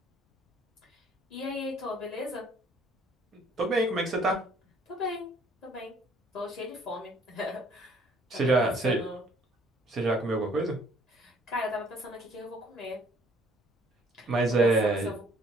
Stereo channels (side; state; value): both; normal; correlation 0.60